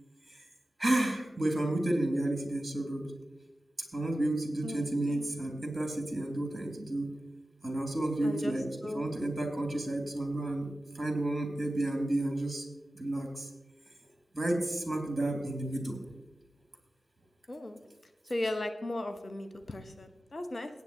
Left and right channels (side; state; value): both; normal; correlation 0.94